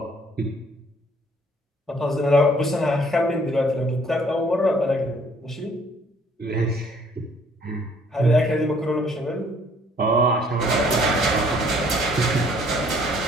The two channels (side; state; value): both; normal; correlation 0.61